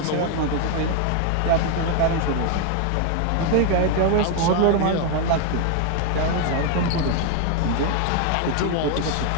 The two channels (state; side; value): different; both; correlation 0.01